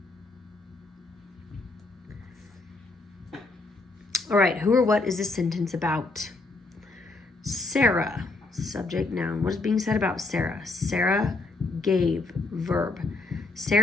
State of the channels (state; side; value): quieter; right; 3.3 dB